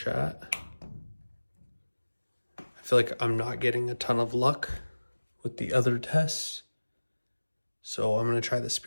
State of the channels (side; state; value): both; inverted; correlation -1.00